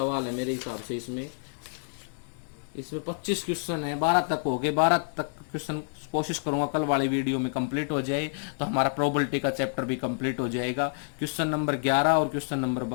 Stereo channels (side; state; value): right; silent; digital silence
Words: है मेरे हिसाब से। इसमें 25 क्वेश्चन है, 12 तक हो गए, 12 तक क्वेश्चन कोशिश करूंगा कल वाली वीडियो में कंप्लीट हो जाए, तो हमारा प्रोबेबिलिटी का चैप्टर भी कंप्लीट हो जाएगा। क्वेश्चन नंबर 11 और क्वेश्चन नंबर